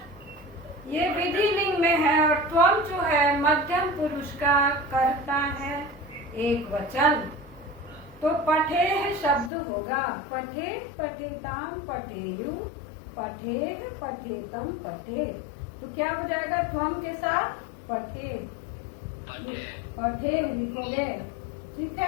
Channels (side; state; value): right; drops out; at 9.5 s